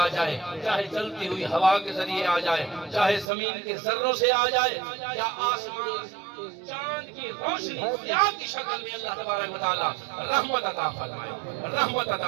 جائے، چاہے چلتی ہوئی ہوا کے ذریعے آ جائے، چاہے زمین کے ذروں سے آ جائے، یا آسمان چاند کی روشنی ضیاء کی شکل میں اللہ تبارک و تعالیٰ رحمت عطا فرمائے۔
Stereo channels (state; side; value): drops out; left; at 3.2 s